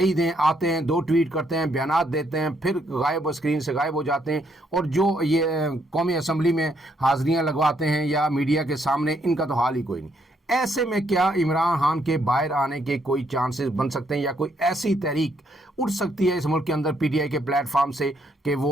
ہیں آتے ہیں 2 ٹویٹ کرتے ہیں، بیانات دیتے ہیں، پھر غائب اسکرین سے غائب ہو جاتے ہیں، اور جو یہ قومی اسمبلی میں حاضریاں لگواتے ہیں یا میڈیا کے سامنے، ان کا تو حال ہی کوئی نہیں۔ ایسے میں کیا عمران خان کے باہر آنے کے کوئی چانسز بن سکتے ہیں یا کوئی ایسی تحریک اٹھ سکتی ہے اس ملک کے اندر پی ٹی آئی کے پلیٹ فارم سے کہ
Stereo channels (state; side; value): normal; both; correlation 0.73